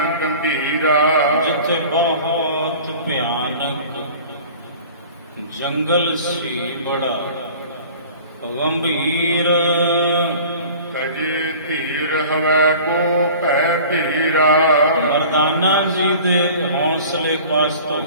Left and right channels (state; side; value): inverted; both; correlation -0.43